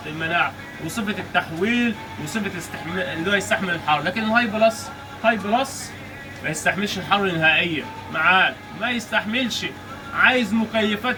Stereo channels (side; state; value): both; identical; correlation 1.00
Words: المناعة وصفة التحويل وصفة اللي هو يستحمل الحر. لكن الهاي بلس، هاي بلس ما يستحملش الحر نهائيا معاك، ما يستحملش. عايز